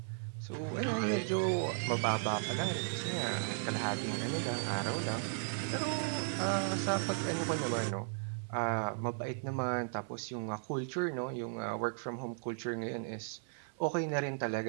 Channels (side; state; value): left; silent; 54 dB below the other